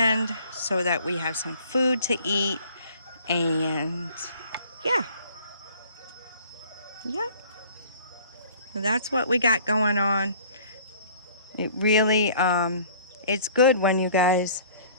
so that we have some food to eat. And yeah. That's what we got going on. It really it's good when you guys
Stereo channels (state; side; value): inverted; both; correlation -0.52